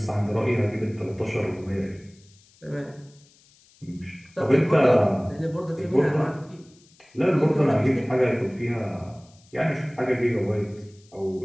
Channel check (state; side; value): noise; left; hiss, 29 dB below the sound